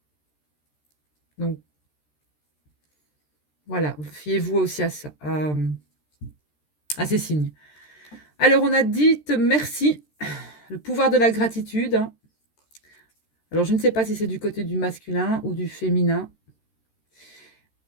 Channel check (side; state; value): right; late; 13 ms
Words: Donc voilà, fiez-vous aussi à ça, à ces signes. Alors on a dit merci, le pouvoir de la gratitude. Alors je ne sais pas si c'est du côté du masculin ou du féminin.